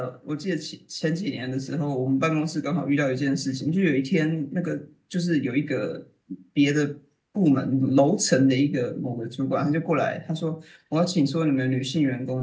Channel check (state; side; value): identical; both; correlation 1.00